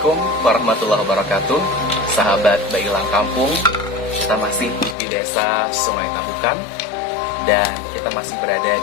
warahmatullahi wabarakatuh. Sahabat Bailang Kampung, kita masih di desa Sungai Tabukan dan kita masih berada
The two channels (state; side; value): drops out; right; at 5.0 s